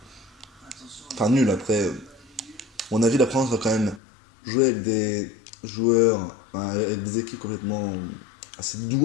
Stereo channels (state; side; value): drops out; right; at 4.0 s